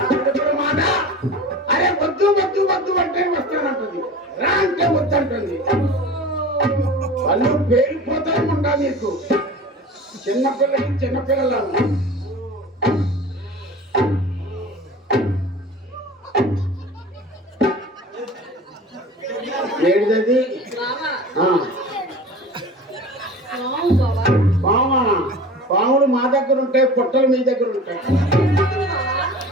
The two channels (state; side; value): normal; both; correlation 0.37